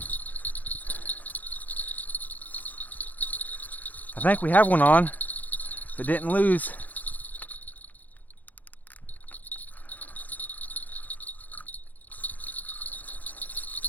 I think we have one on, but didn't lose.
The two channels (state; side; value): late; right; 0.081 ms